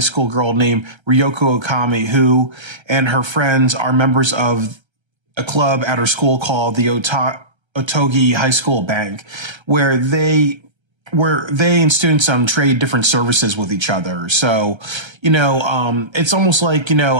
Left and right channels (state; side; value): late; left; 1.3 ms